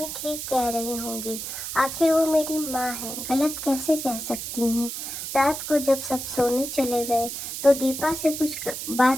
ठीक कह रही होंगी। आखिर वो मेरी माँ है, गलत कैसे कह सकती हैं। रात को जब सब सोने चले गए तो दीपा से कुछ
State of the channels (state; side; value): noise; right; hiss, 6 dB below the sound